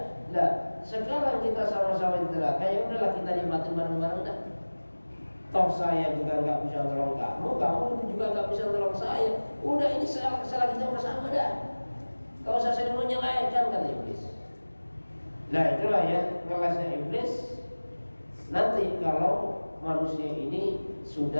Nah, sekarang kita sama-sama di neraka, ya udahlah kita nikmatin bareng-bareng dah. Toh saya juga nggak bisa tolong kamu juga nggak bisa tolong saya. Udah ini salah kita bersama dah. Kau usah saling menyalahkan kata iblis. Nah itulah ya kelasnya iblis. Nanti kalau manusia ini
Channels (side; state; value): both; inverted; correlation -1.00